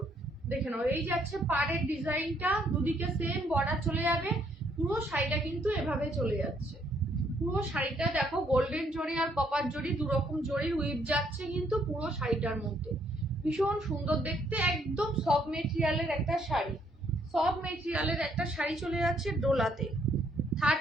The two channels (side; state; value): both; normal; correlation 0.69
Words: দেখে নাও, এই যাচ্ছে পাড়ের ডিজাইনটা, দুদিকে সেম বর্ডার চলে যাবে। পুরো শাড়িটা কিন্তু এভাবে চলে যাচ্ছে। পুরো শাড়িটা দেখো, গোল্ডেন জরি আর কপার জরি দু রকম জরির উইভ যাচ্ছে কিন্তু পুরো শাড়িটার মধ্যে। ভীষণ সুন্দর দেখতে, একদম সফট মেটেরিয়ালের একটা শাড়ি। সফট মেটেরিয়ালের একটা শাড়ি চলে যাচ্ছে ডোলাতে।